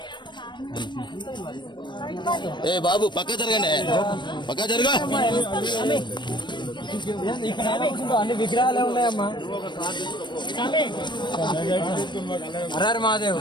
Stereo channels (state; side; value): late; right; 0.22 ms